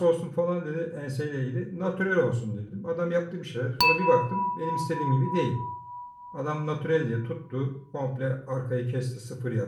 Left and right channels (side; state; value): both; identical; correlation 1.00